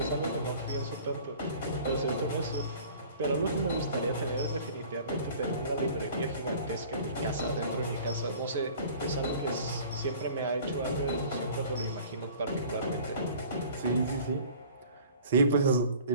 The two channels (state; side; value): inverted; both; correlation -0.47